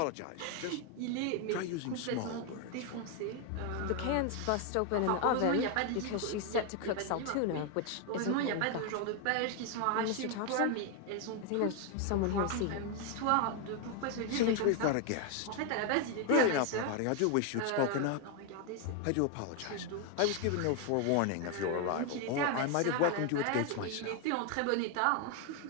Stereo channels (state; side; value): different; both; correlation 0.01